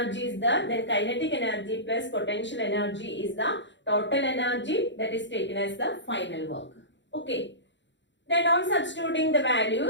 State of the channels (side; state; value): right; late; 0.53 ms